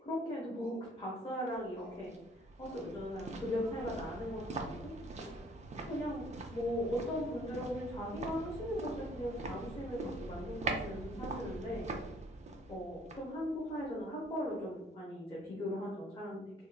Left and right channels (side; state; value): both; normal; correlation 0.58